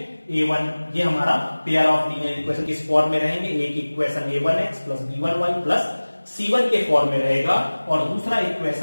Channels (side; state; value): both; inverted; correlation -1.00